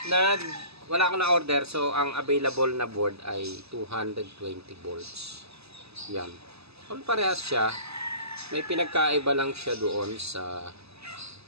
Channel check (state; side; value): late; left; 0.79 ms